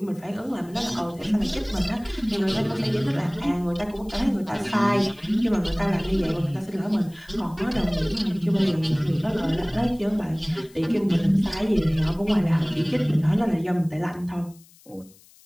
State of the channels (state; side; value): noise; left; hiss, 26 dB below the sound